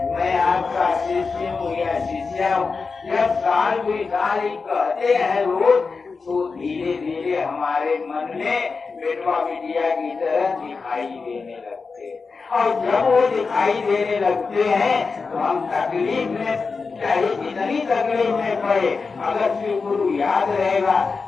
मैं आपका शिष्य हूँ या शिष्या हूँ। जब साल कोई साल ही कहते हैं रोज, तो धीरे धीरे हमारे मन में बेटवा बिटिया की तरह दिखाई देने लगते हैं। और जब वो दिखाई देने लगते हैं तो हम तकलीफ में, चाहे जितनी तकलीफ में पड़े, अगर शिव गुरु याद रहेगा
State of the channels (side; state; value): right; quieter; 4.6 dB